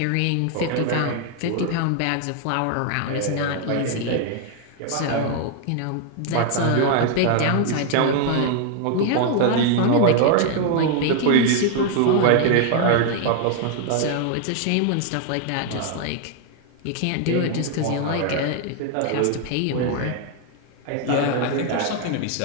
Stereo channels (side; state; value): both; different; correlation 0.00